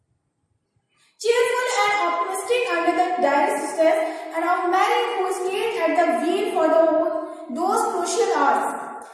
Cheerful and optimistic under the direst stress and of Mary who stayed at the wheel for those crucial hours.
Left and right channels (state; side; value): identical; both; correlation 1.00